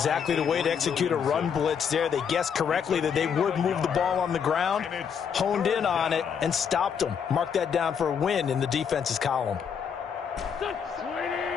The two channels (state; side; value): quieter; right; 7.2 dB